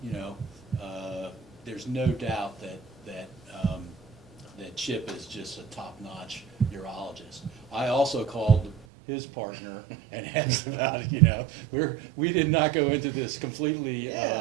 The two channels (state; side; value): drops out; left; at 8.8 s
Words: you know, there's no doubt that Chip is just a top-notch urologist. I also called his partner and asked about it. You know, we did not go into this completely.